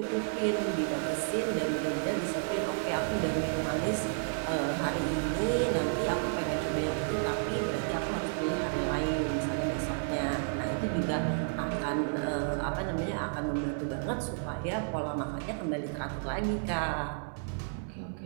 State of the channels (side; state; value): left; silent; 57 dB below the other